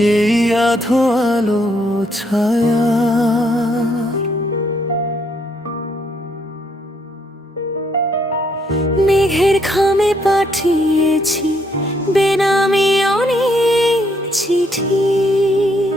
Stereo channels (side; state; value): both; normal; correlation 0.72